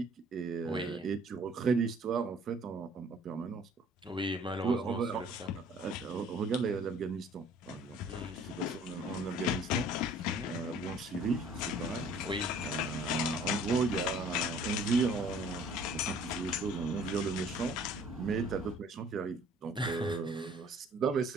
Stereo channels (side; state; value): both; normal; correlation 0.54